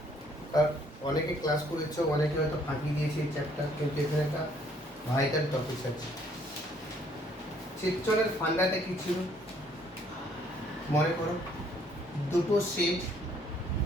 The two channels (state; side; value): normal; both; correlation 0.64